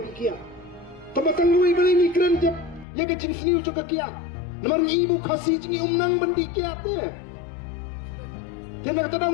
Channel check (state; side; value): drops out; right; at 2.9 s